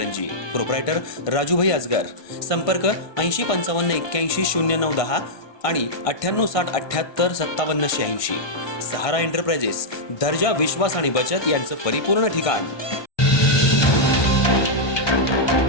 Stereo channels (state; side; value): late; right; 1.2 ms